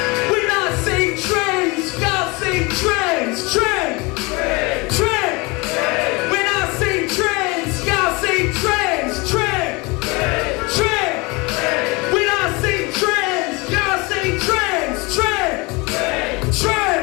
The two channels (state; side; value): quieter; right; 26.2 dB